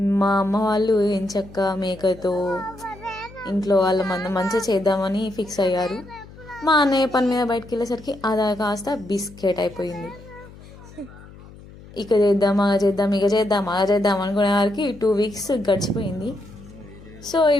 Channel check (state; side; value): noise; left; hum, 19 dB below the sound